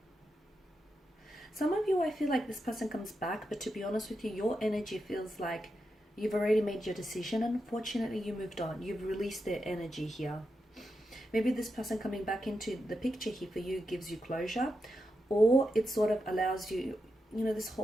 Some of you, I feel like this person comes back, but to be honest with you, your energy feels like you've already made your decision, and unfortunately you moved on. You've released their energy here. Maybe this person coming back into the picture here for you gives you closure, or it sort of allows you, you know, this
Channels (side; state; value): both; normal; correlation 0.87